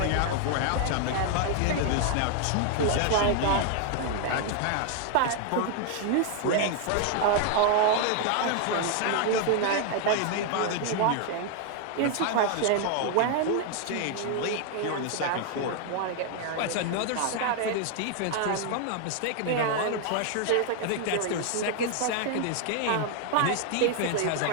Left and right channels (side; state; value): both; different; correlation 0.00